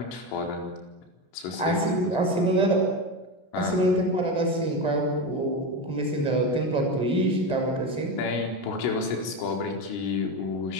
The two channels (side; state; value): right; late; 17 ms